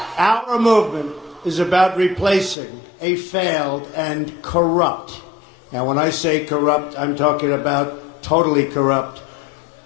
Our movement is about replacing a failed and corrupt, now when I say corrupt, I'm talking about totally corrupt,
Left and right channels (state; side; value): drops out; right; at 2.6 s